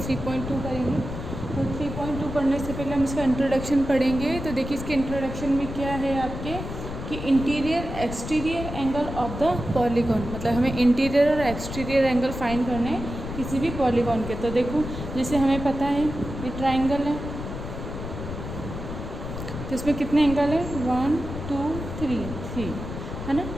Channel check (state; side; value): noise; left; rumble, 7 dB below the sound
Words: करेंगे। तो 3.2 पढ़ने से पहले हम इसका इंट्रोडक्शन पढ़ेंगे। तो देखिए इसके इंट्रोडक्शन में क्या है आपके कि interior exterior angle of the polygon, मतलब हमें इंटीरियर और एक्सटीरियर एंगल फाइंड करने हैं किसी भी पॉलीगॉन के। तो देखो जैसे हमें पता है ये ट्राइंगल है, तो इसमें कितने एंगल है 1 2 3 है ना।